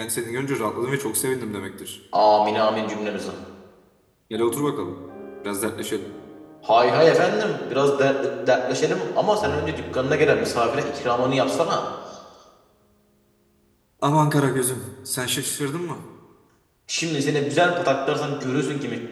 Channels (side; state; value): both; identical; correlation 1.00